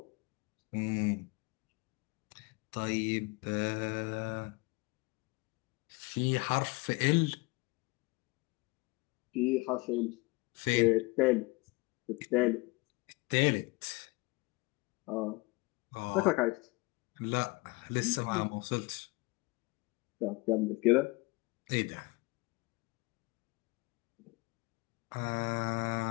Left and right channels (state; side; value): quieter; right; 25.4 dB